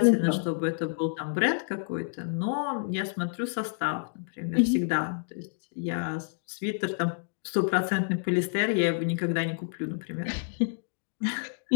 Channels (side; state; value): right; silent; digital silence